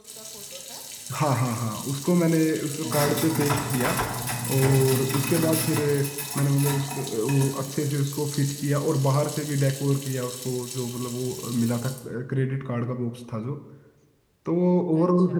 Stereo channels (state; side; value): identical; both; correlation 1.00